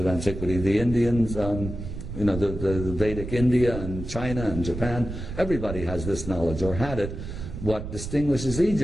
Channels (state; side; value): noise; right; rumble, 8 dB below the sound